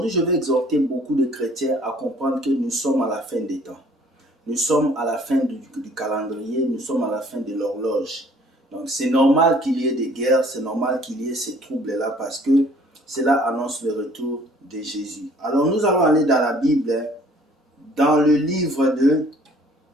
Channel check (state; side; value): normal; both; correlation 0.56